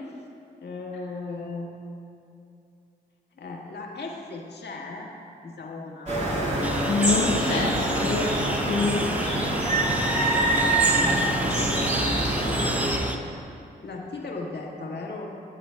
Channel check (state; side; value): normal; both; correlation 0.31